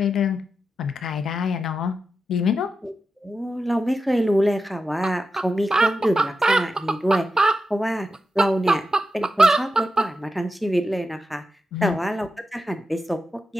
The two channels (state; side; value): normal; both; correlation 0.89